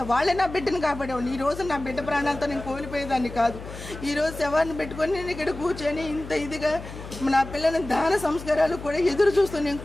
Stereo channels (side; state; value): left; noise; hum, 12 dB below the sound